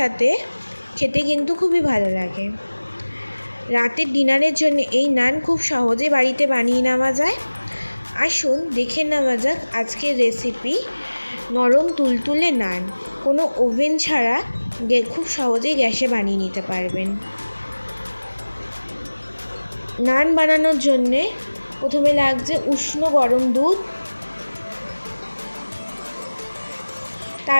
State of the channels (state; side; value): inverted; both; correlation -1.00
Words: খেতে কিন্তু খুবই ভালো লাগে। রাতের ডিনারের জন্য এই নান খুব সহজে বাড়িতে বানিয়ে নেওয়া যায়। আসুন দেখে নেওয়া যাক আজকের রেসিপি নরম তুলতুলে নান। কোনো ওভেন ছাড়া খুব সহজেই গ্যাসে বানিয়ে নিতে পারবেন। নান বানানোর জন্যে প্রথমে লাগছে উষ্ণ গরম দুধ,